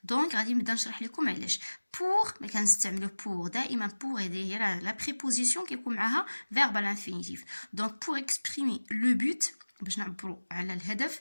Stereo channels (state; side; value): inverted; both; correlation -1.00